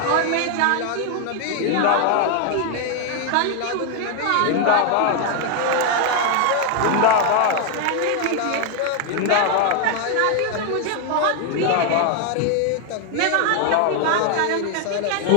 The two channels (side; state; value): both; different; correlation 0.01